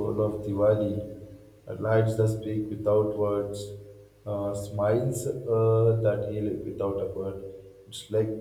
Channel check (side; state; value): both; identical; correlation 1.00